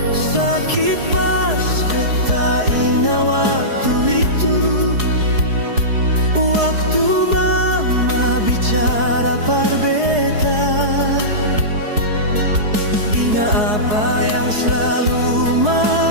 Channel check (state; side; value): late; left; 4.8 ms